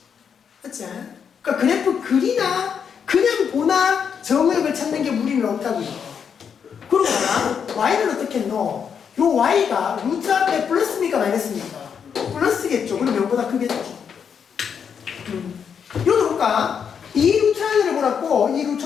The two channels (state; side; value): quieter; right; 7.2 dB